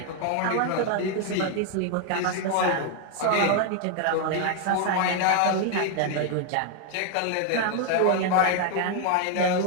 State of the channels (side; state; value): both; different; correlation 0.00